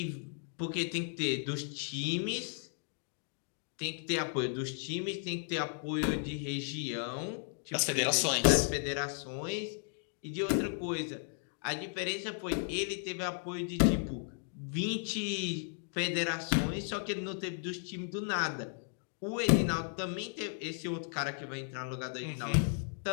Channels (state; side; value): silent; right; 54 dB below the other